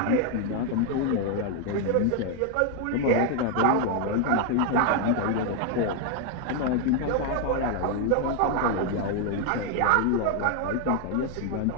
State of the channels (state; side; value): different; both; correlation 0.01